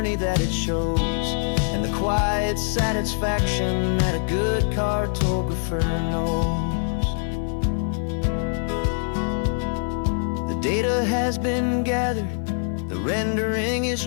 that it shows, and the quiet satisfaction that a good cartographer knows. The data has been gathered, the rendering is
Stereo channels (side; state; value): right; silent; digital silence